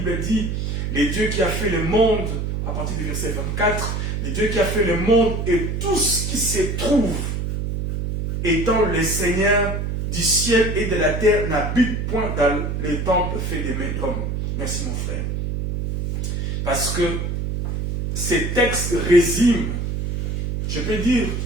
dit, le Dieu qui a fait le monde, à partir du verset 24, le Dieu qui a fait le monde et tout ce qui se trouve, étant le Seigneur du ciel et de la terre, n'habite point dans les temples faits des mains d'hommes. Merci mon frère. Parce que ces textes résument, je peux dire,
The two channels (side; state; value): right; noise; hum, 2 dB below the sound